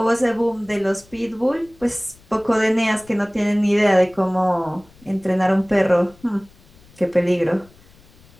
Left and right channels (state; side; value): noise; left; rumble, 27 dB below the sound